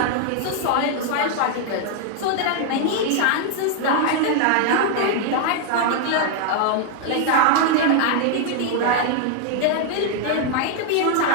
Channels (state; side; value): different; both; correlation 0.00